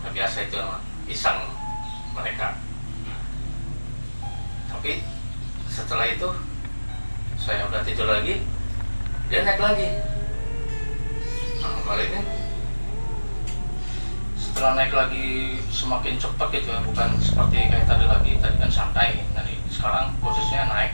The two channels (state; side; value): inverted; both; correlation -1.00